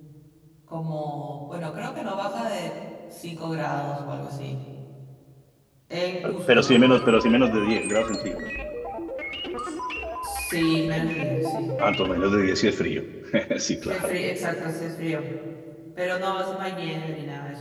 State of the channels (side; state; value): both; identical; correlation 1.00